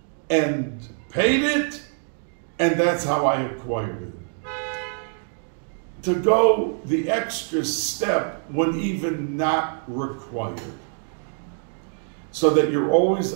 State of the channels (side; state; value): left; silent; 58 dB below the other